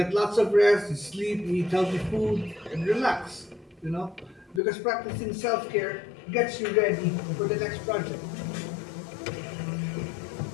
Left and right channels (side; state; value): right; drops out; at 4.6 s